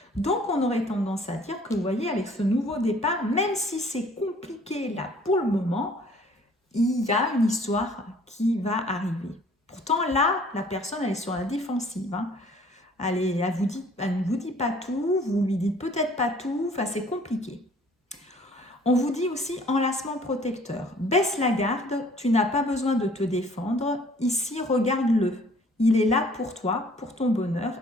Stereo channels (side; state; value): both; normal; correlation 0.55